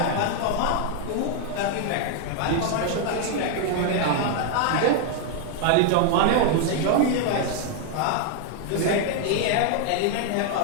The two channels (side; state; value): both; different; correlation 0.00